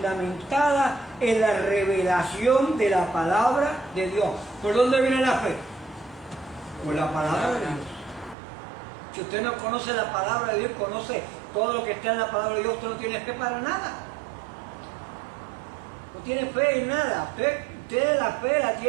en la revelación de la palabra de Dios. ¿Por dónde viene la fe? Por la palabra de Dios. Si usted no conoce la palabra de Dios, conoce todo lo que está en la palabra de Dios, usted no tiene fe para nada. No tiene fe en nada. Usted la fe la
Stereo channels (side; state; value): left; drops out; at 8.3 s